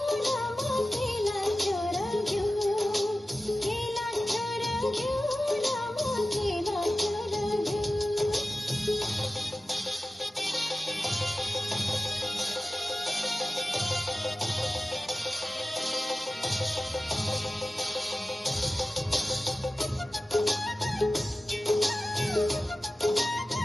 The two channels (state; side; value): normal; both; correlation 0.95